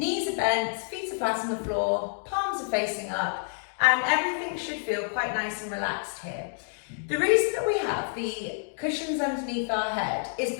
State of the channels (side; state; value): right; silent; 59 dB below the other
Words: are bent, feet are flat on the floor, palms are facing up, and everything should feel quite nice and relaxed here. The reason that we have the cushions underneath our head is